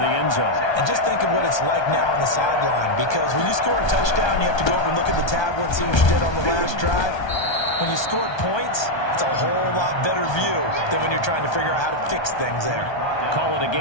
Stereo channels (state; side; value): late; right; 1.2 ms